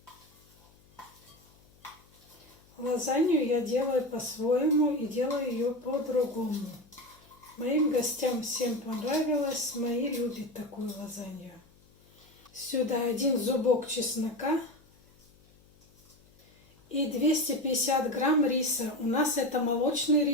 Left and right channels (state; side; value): noise; left; hum, 29 dB below the sound